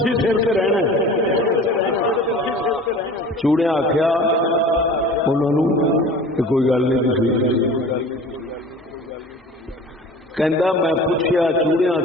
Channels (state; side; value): normal; both; correlation 0.41